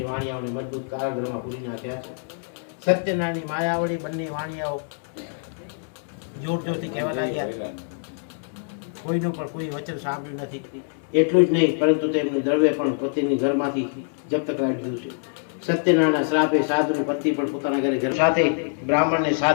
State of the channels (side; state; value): right; silent; digital silence